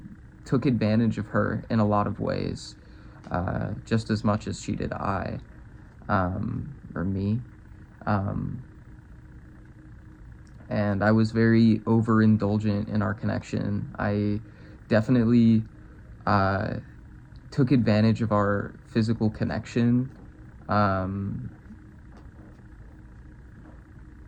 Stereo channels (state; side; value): identical; both; correlation 1.00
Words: took advantage of her in a lot of ways, just as much as she did or me. And I was very overindulgent in our connection. I definitely took advantage of our physical connection.